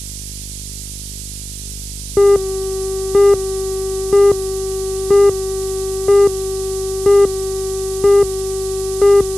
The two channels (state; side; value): noise; right; hiss, 11 dB below the sound